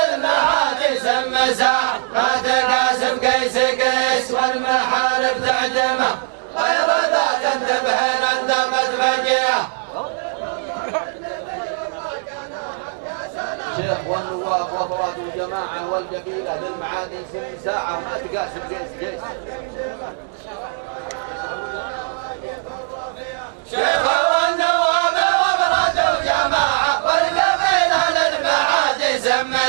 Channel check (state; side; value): silent; left; digital silence